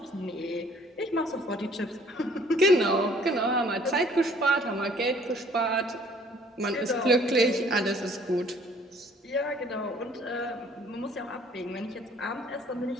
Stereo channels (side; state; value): both; normal; correlation 0.58